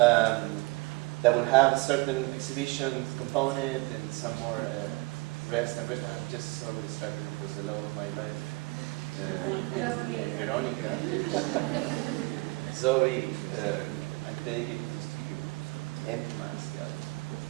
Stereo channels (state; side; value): quieter; left; 24.7 dB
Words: will have certain exhibition component and some more rest and rest. I'm just so distracted because the love of my life, Veronica, Zoe, I take it to the studio, and Max, the other.